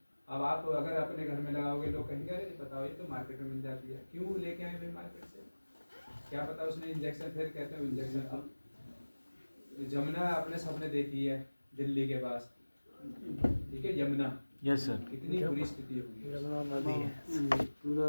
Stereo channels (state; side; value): inverted; both; correlation -1.00